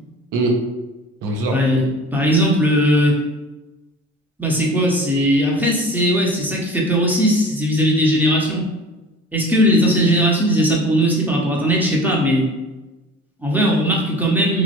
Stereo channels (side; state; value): both; normal; correlation 0.41